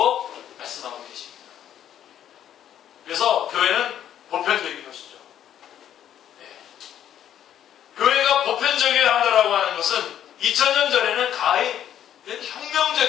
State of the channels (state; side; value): quieter; right; 10.5 dB